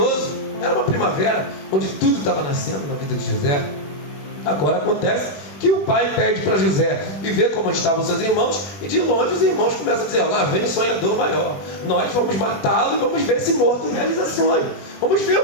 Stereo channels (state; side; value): late; right; 21 ms